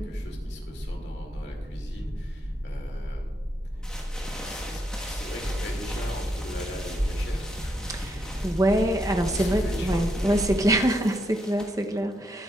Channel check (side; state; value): both; normal; correlation 0.78